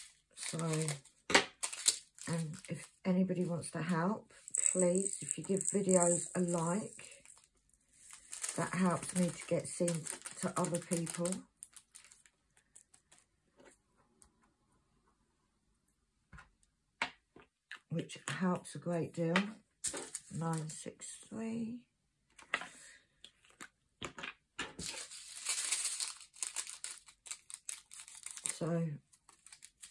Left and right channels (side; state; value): both; identical; correlation 1.00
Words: So, and if anybody wants to help, please, if you give videos a like, That helps me to get seen to other people. Which helps a great deal. 963. So